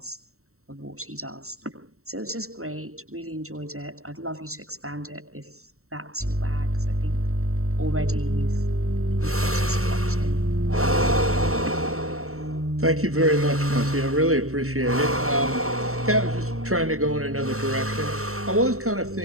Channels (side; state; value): left; late; 0.63 ms